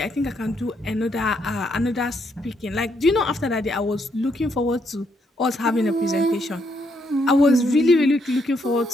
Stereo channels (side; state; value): both; normal; correlation 0.75